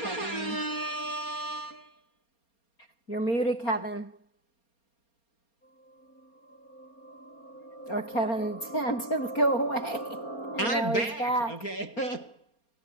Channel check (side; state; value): right; late; 4.3 ms